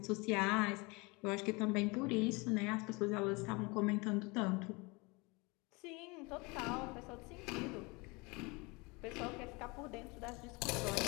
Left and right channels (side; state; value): right; quieter; 26.9 dB